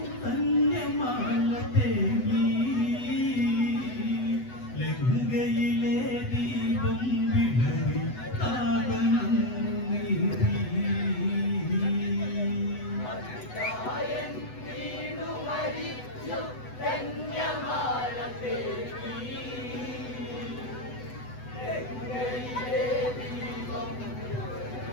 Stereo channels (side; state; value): right; late; 8.0 ms